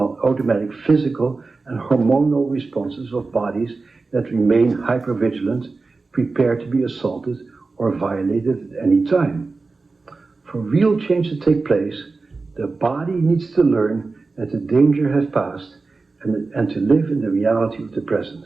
physical and hormonal responses of bodies that remain hypervigilant, prepared to be assaulted or violated at any time. For real change to take place, the body needs to learn that the danger has passed and to live in the reality of the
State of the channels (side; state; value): left; quieter; 3.9 dB